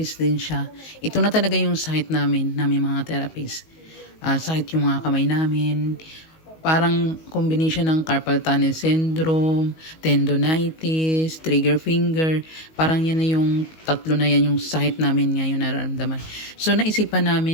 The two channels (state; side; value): late; right; 19 ms